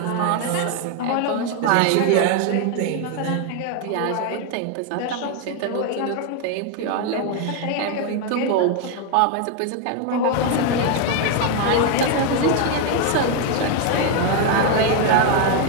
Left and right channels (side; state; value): both; different; correlation 0.01